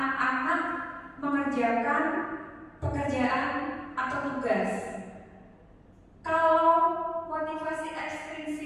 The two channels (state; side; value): identical; both; correlation 1.00